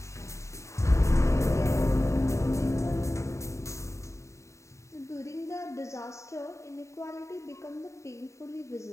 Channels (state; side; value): late; right; 0.14 ms